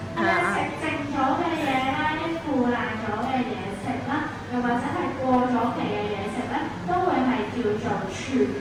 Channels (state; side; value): identical; both; correlation 1.00